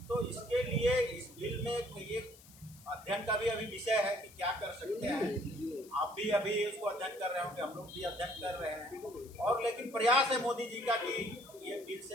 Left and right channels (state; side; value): noise; left; hiss, 22 dB below the sound